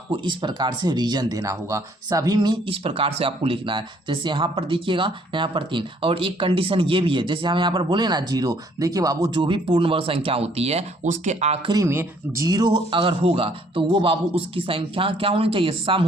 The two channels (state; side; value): normal; both; correlation 0.63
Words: इस प्रकार से रीजन देना होगा, सभी में इस प्रकार से आपको लिखना है। जैसे यहाँ पर देखिएगा, यहाँ पर 3, और एक कंडीशन ये भी है, जैसे हम यहाँ पर बोले ना 0, देखिए बाबू जो भी पूर्ण वर्ग संख्या होती है उसके आखिरी में 0 अगर होगा तो वो बाबू उसकी संख्या क्या होनी चाहिए, सम